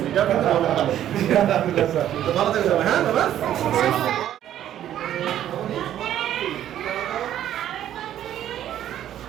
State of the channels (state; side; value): quieter; left; 11.4 dB